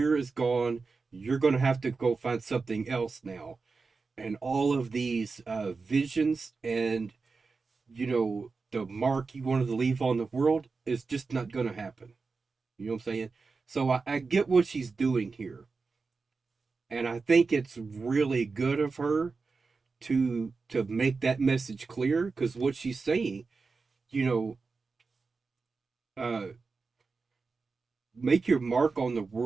is gone. You're going to have to go find something else now. And all of these visions and, the mark you wanted to leave on the world is just not going to happen. You know what I'm saying? So I get what she's doing here. And I think it's really good of her to make that message clear, because what she's saying, make your mark on the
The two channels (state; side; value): quieter; left; 4.4 dB